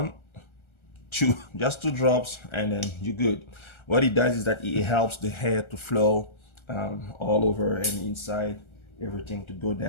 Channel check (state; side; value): late; right; 1.3 ms